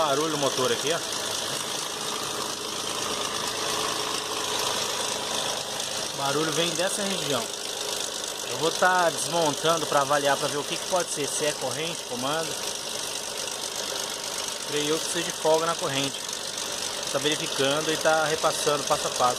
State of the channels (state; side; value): identical; both; correlation 1.00